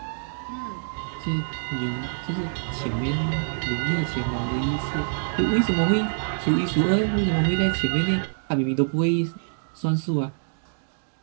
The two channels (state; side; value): silent; left; digital silence